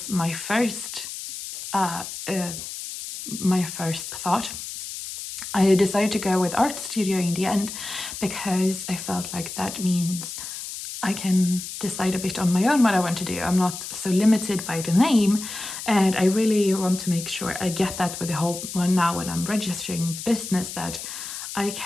my first thought. I decided to go with Art Studio in the end because I felt like that means I can decide a bit on my own what I want to do. I'm not so limited by the name, and I really want to make sure I get that with the whole one now when I'm registering the business, that I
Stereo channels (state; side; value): noise; left; hiss, 8 dB below the sound